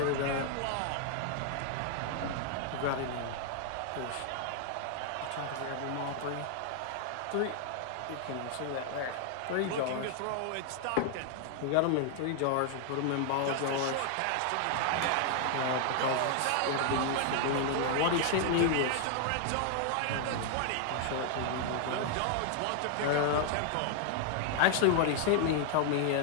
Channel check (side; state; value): both; different; correlation 0.00